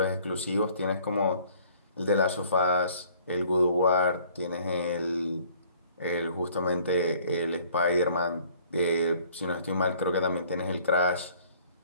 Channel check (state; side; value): inverted; both; correlation -0.56